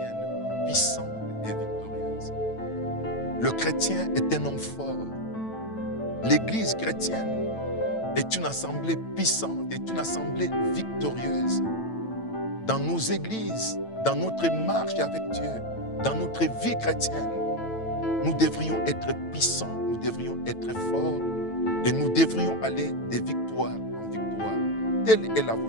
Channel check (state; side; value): late; right; 9.0 ms